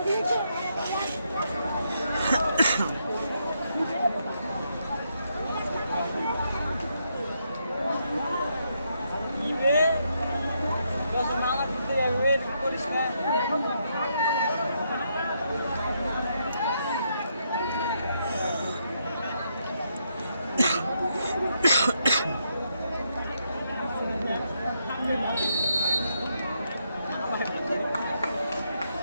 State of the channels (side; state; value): both; inverted; correlation -0.78